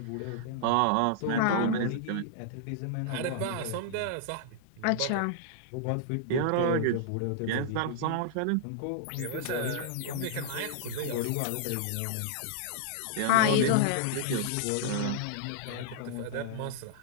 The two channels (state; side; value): different; both; correlation -0.01